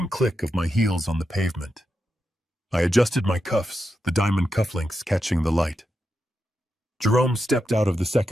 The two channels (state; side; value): normal; both; correlation 0.87